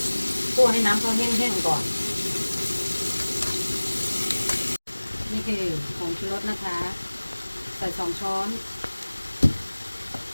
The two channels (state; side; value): inverted; both; correlation -1.00